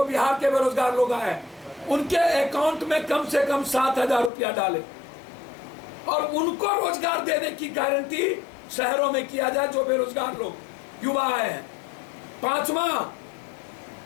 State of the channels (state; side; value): drops out; right; at 4.3 s